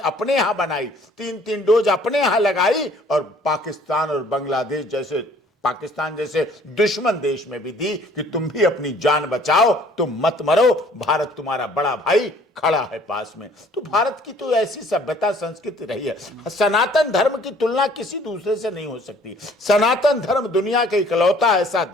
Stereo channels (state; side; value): normal; both; correlation 0.56